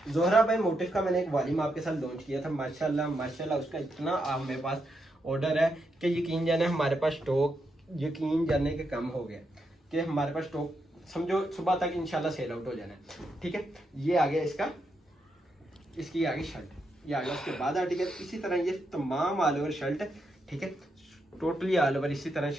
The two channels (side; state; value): both; normal; correlation 0.82